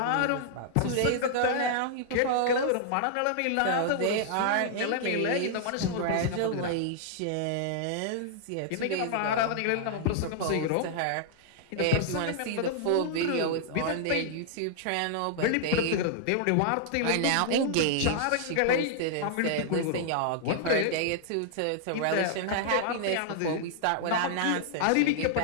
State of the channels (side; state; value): both; different; correlation -0.01